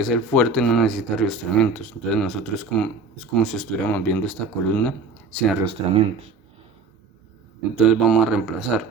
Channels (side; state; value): left; quieter; 4.1 dB